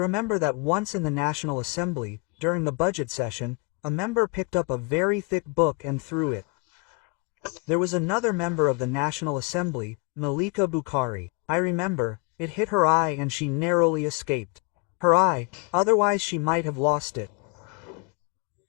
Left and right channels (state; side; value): quieter; right; 30.9 dB